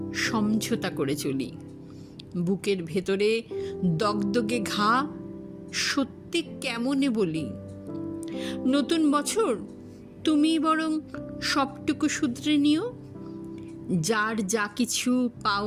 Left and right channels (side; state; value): both; identical; correlation 1.00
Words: সমঝোতা করে চলি, বুকের ভেতরে দগদগে ঘা, সত্যি কেমনে বলি। নতুন বছর তুমি বরং সবটুকু শুধরে নিও, যার যা কিছু